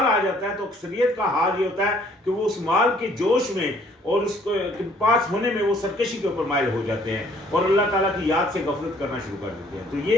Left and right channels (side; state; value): both; normal; correlation 0.61